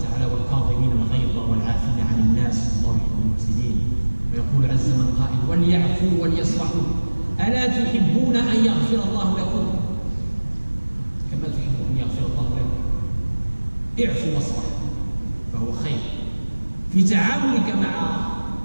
والكاظمين الغيظ والعافين عن الناس والله يحب المحسنين. ويقول عز من قائل: وليعفوا وليصفحوا ألا تحبون أن يغفر الله لكم كما تحبون أن يغفر الله لكم. اعفوا واصفحوا فهو خير. في تعاملك مع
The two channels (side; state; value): both; inverted; correlation -1.00